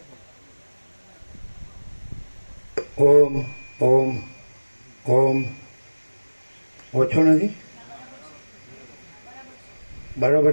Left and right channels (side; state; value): both; inverted; correlation -1.00